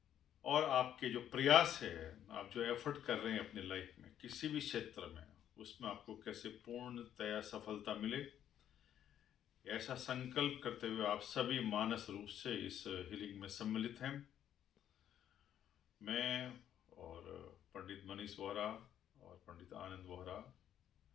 और आपके जो प्रयास है, आप जो एफर्ट कर रहे हैं अपनी लाइफ में किसी भी क्षेत्र में, उसमें आपको कैसे पूर्णतया सफलता मिले। ऐसा संकल्प करते हुए आप सभी मानस रूप से इस हीलिंग में सम्मिलित हैं। मैं और पंडित मनीष वोहरा और पंडित आनंद वोहरा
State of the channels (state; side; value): quieter; right; 10.4 dB